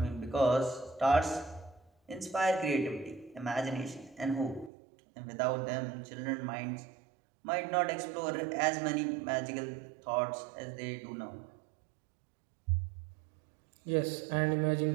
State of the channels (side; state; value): left; drops out; at 4.7 s